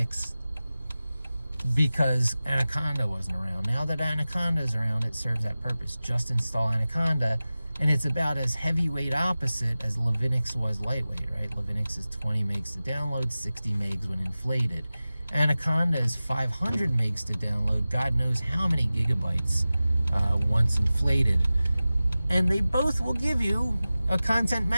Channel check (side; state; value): both; inverted; correlation -0.96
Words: because Anaconda wasn't around. Now that Anaconda is around, it serves that purpose. Just install Anaconda, and it's about as heavyweight opposite as Levinix was lightweight, right? Levinix is 20 megs to download, 60 megs when inflated. Anaconda is 500 megs to download, God knows how many gigabytes once inflated. And they both will give you a content